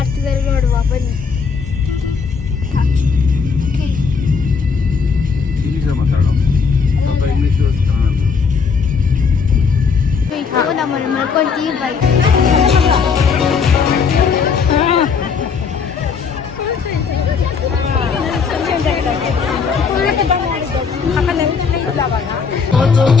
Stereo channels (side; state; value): right; quieter; 5.6 dB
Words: ನೋಡುವ ಬನ್ನಿ. ನಮ್ಮನ್ನು ಮಾಡ್ಕೊಂತೀವಿ ಬೈಕ್.